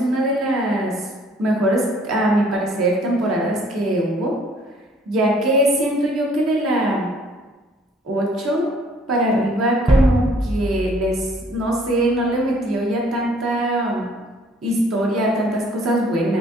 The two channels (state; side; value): normal; both; correlation 0.59